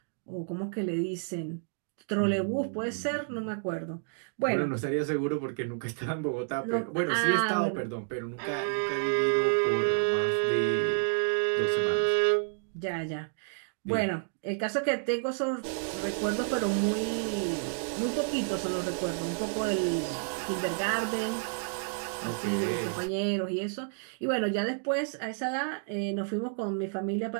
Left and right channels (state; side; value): silent; left; digital silence